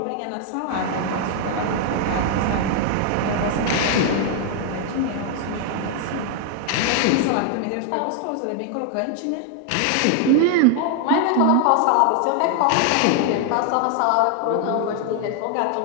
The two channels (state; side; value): different; both; correlation 0.00